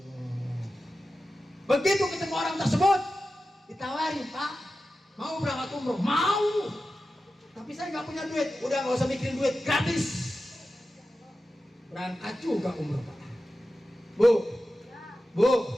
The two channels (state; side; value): normal; both; correlation 0.93